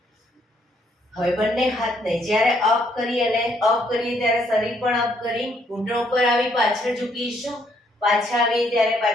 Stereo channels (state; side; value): normal; both; correlation 0.70